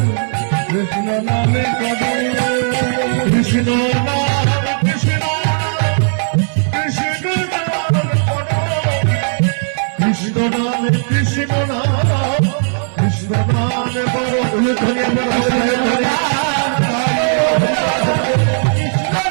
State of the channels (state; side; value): silent; left; digital silence